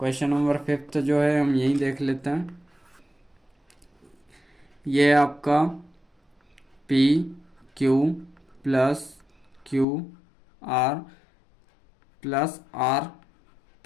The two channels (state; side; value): drops out; right; at 9.9 s